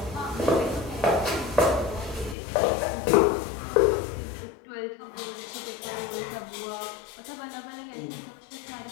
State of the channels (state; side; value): drops out; right; at 2.4 s